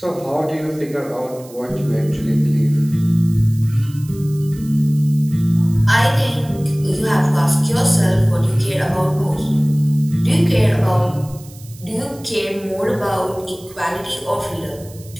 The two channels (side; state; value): right; noise; hiss, 22 dB below the sound